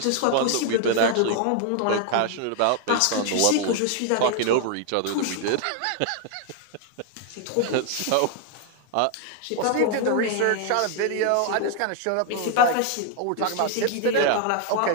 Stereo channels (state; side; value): different; both; correlation 0.00